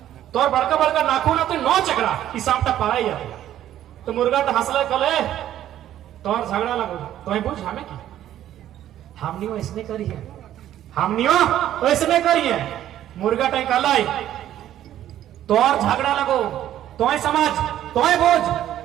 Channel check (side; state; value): left; quieter; 12.0 dB